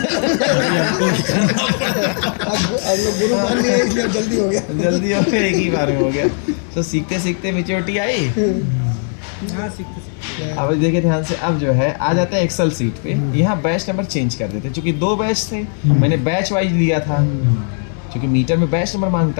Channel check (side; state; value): right; silent; 58 dB below the other